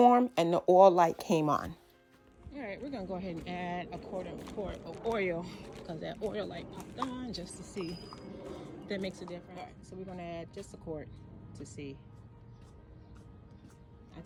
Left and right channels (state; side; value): identical; both; correlation 1.00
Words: and the oil light came on. All right, we're gonna go ahead and add a quart of oil because that oil light popped on just to see if that makes a difference. All right, so we're gonna add just a quart to see. I